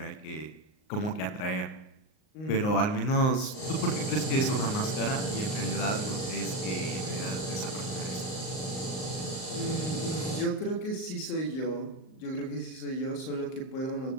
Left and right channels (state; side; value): late; right; 38 ms